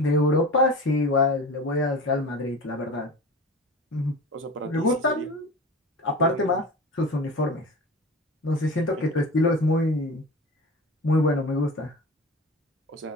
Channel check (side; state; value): both; normal; correlation 0.33